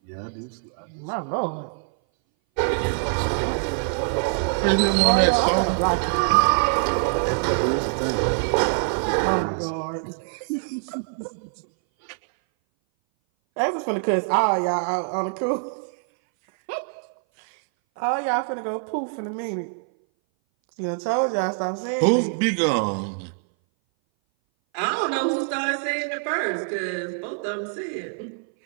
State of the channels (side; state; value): left; silent; 59 dB below the other